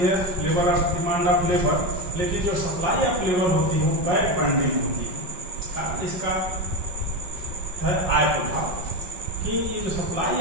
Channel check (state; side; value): late; left; 5.5 ms